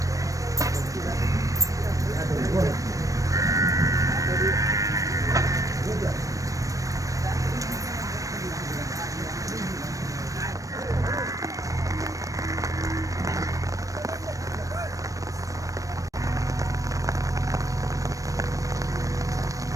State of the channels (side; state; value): left; late; 0.16 ms